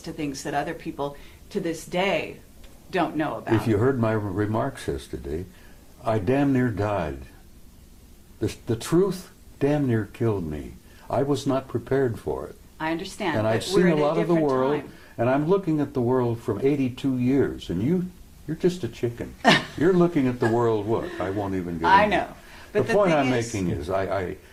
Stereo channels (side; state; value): both; identical; correlation 1.00